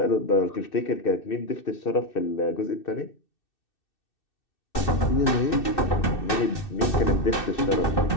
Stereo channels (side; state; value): right; late; 2.6 ms